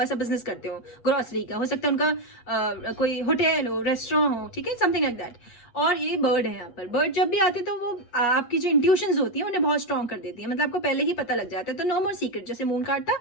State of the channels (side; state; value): right; late; 8.4 ms